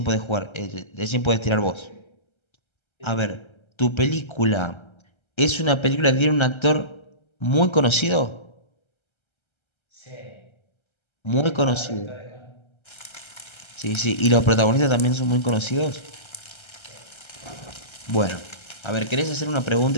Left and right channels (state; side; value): late; right; 1.3 ms